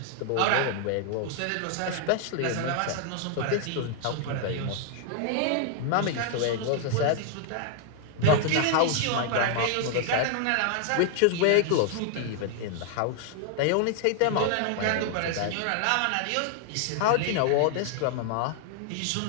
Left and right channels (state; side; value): different; both; correlation 0.00